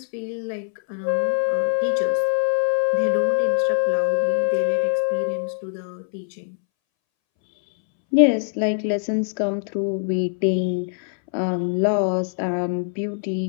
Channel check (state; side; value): silent; right; 64 dB below the other